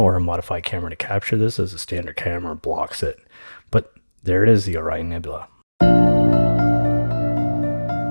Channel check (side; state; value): both; inverted; correlation -1.00